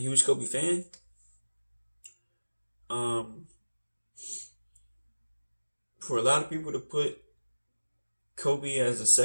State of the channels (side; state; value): both; inverted; correlation -1.00